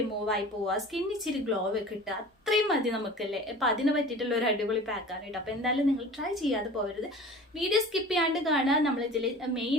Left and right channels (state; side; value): normal; both; correlation 0.40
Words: ആയി പോവുക, സ്കിൻ ഇച്ചിരി ഗ്ലോ കിട്ടുക, അത്രയും മതി നമുക്കല്ലേ. അപ്പം അതിന് പറ്റിയിട്ടുള്ള ഒരു അടിപൊളി പാക്കാണ് കേട്ടോ. അപ്പോൾ എന്തായാലും നിങ്ങൾ ട്രൈ ചെയ്യാതെ പോകരുത്, വീഡിയോ സ്കിപ്പ് ചെയ്യാണ്ട് കാണുക. നമ്മളിതിൽ